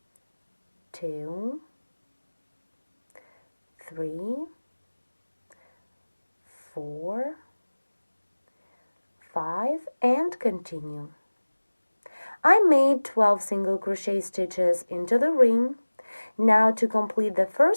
2, 3, 4, 5, and continue. I made 12 single crochet stitches into the ring. Now to complete the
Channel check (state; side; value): inverted; both; correlation -1.00